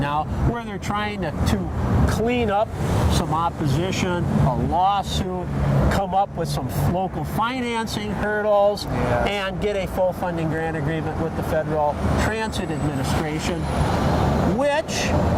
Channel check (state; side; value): identical; both; correlation 1.00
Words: where they're trying to clean up some opposition, a lawsuit, come up with some local financing hurdles, and get a full funding grant agreement with the Federal Transit Administration, which,